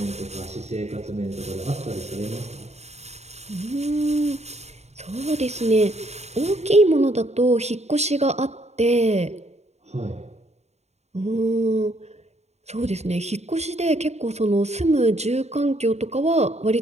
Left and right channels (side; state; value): left; late; 0.32 ms